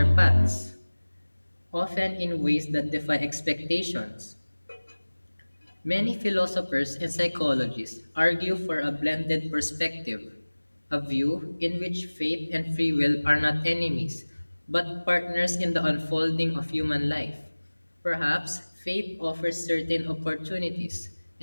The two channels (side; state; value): both; inverted; correlation -1.00